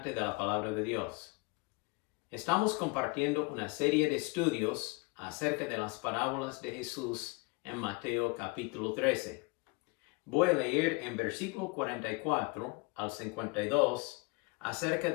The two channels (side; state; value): right; quieter; 28.3 dB